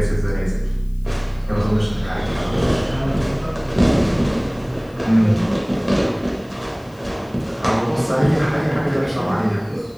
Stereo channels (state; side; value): noise; left; hiss, 29 dB below the sound